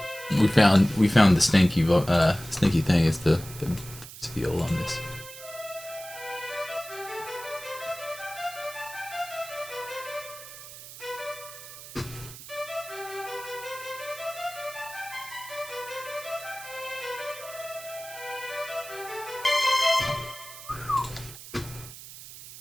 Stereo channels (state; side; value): noise; right; hiss, 14 dB below the sound